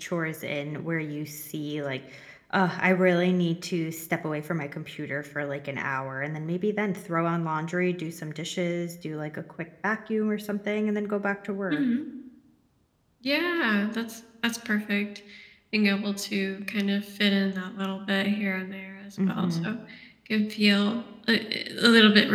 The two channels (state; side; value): identical; both; correlation 1.00